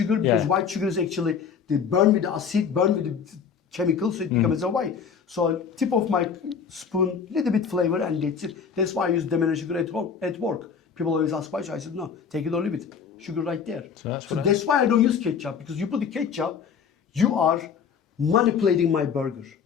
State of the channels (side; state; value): right; quieter; 6.6 dB